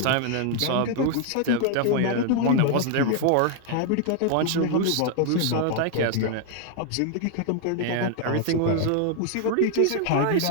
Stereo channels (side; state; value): both; different; correlation 0.00